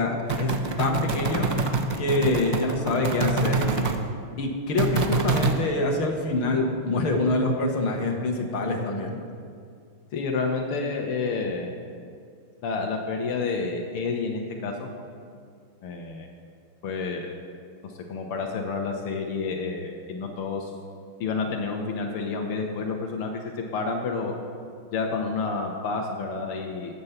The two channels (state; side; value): late; right; 5.6 ms